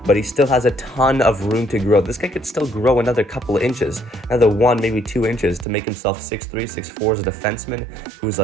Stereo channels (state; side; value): drops out; left; at 5.7 s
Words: but he still has a ton of room to grow. This guy could still grow another couple of inches, another 1, maybe 2 inches to make himself 6'3", 6'4" as a defenseman who's